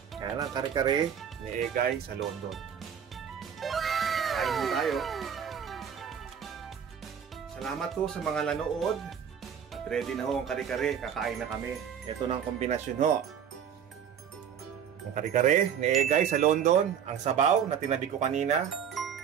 Kaya lang kare-kare ni Egay sa London. Kain po tayo. Salamat po sa mga nanood. At ready na ho ang kare-kare. Kakain na kami. Ito na ang kombinasyon ho. Ang kare-kare ni Egay sa London, ang sabaw na tinabi ko kanina,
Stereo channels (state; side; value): quieter; left; 8.2 dB